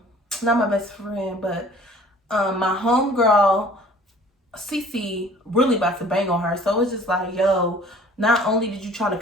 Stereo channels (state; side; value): normal; both; correlation 0.51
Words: my best friend, but my homegirl Cece really about to bang on her. So it's just like, yo, not only did you try to